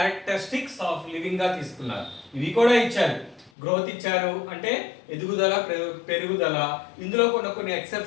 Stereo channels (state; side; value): drops out; right; at 3.5 s